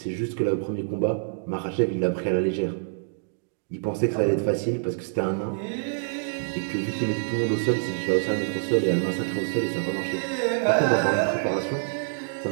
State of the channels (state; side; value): silent; left; digital silence